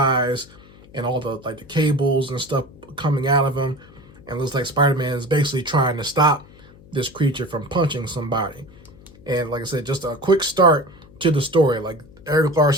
and all the like the cables and stuff coming out of him. And it looks like Spider-Man is basically trying to stop this creature from punching somebody. And like I said, just a quick start to the story. Like, Erik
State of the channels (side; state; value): left; noise; hum, 23 dB below the sound